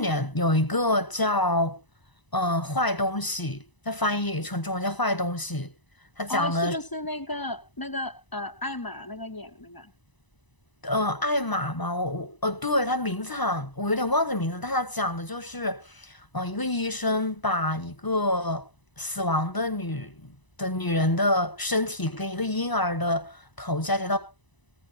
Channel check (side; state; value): right; late; 1.0 ms